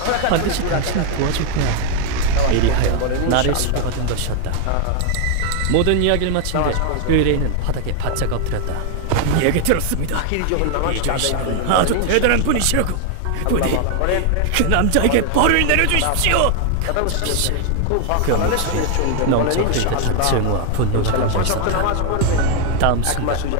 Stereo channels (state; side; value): different; both; correlation 0.01